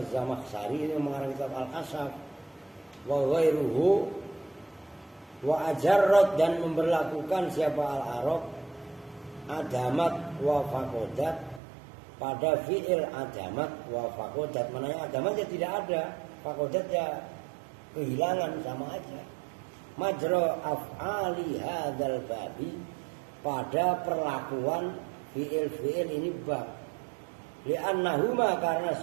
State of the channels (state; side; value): drops out; left; at 11.6 s